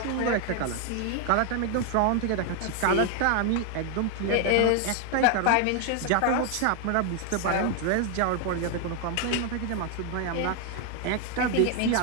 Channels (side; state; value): both; different; correlation 0.01